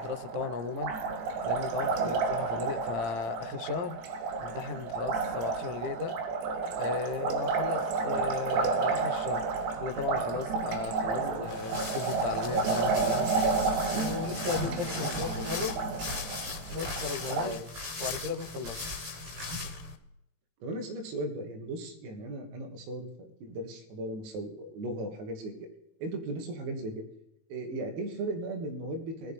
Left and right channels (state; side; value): late; left; 18 ms